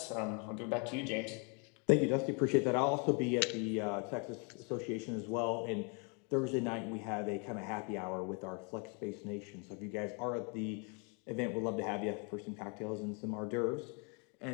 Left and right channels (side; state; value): right; quieter; 34.8 dB